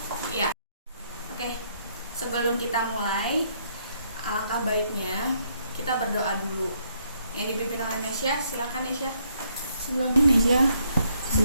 Ya. Oke. Sebelum kita mulai, alangkah baiknya kita berdoa dulu. Yang dipimpin oleh Nesya, silakan Nesya. Sebelum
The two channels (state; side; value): inverted; both; correlation -0.72